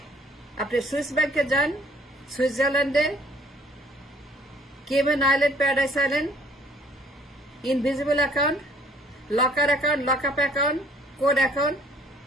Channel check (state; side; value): normal; both; correlation 0.58